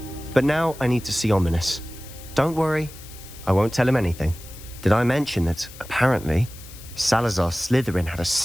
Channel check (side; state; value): left; noise; hiss, 18 dB below the sound